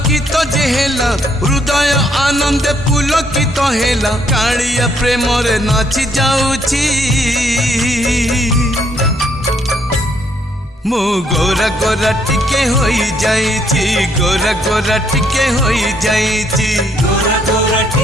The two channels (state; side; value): normal; both; correlation 0.70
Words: जे हेला हृदय आनंद पुलकित हेला कालिया प्रेम रे नाची जाउछि मु गोरा गोरा टिके होई जाइछि गोरा गोरा टिके होई जाइछि गोरा गोरा